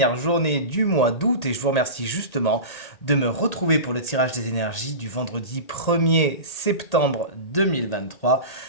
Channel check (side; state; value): right; late; 1.8 ms